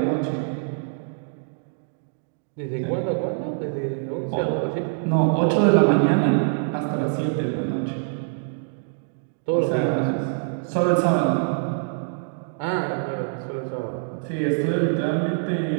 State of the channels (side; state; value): left; silent; digital silence